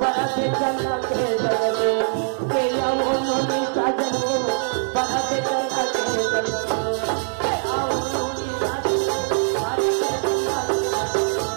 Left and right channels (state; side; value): silent; left; digital silence